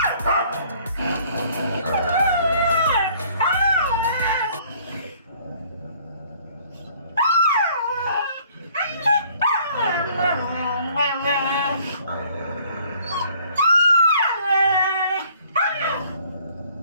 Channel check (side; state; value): both; inverted; correlation -0.58